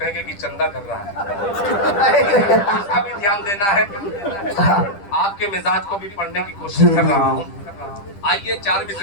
कि चंदा कर रहा है, इसका भी ध्यान देना है। आपके मिजाज को भी पढ़ने की कोशिश कर रहा हूँ। आइए चार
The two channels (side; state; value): right; late; 10 ms